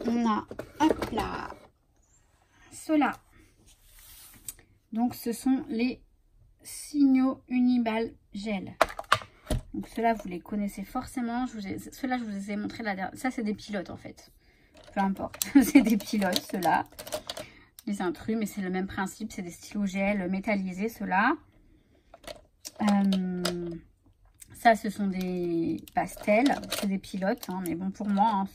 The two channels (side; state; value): both; identical; correlation 1.00